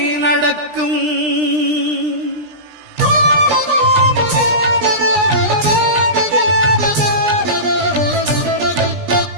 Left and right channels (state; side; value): late; left; 17 ms